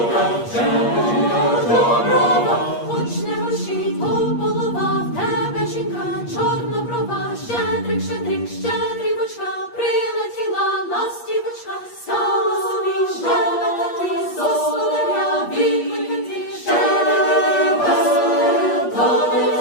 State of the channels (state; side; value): late; right; 8.4 ms